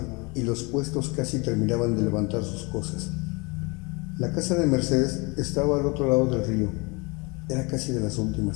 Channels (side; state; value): right; quieter; 28.0 dB